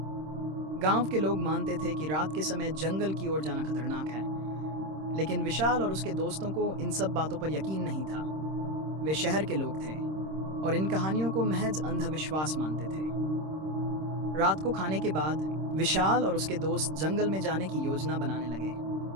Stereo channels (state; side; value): late; left; 26 ms